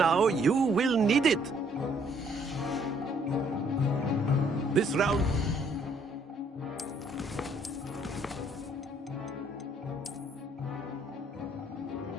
You will need it. This round...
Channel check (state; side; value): normal; both; correlation 0.65